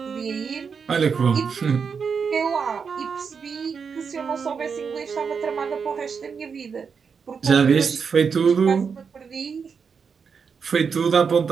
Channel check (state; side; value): quieter; left; 6.0 dB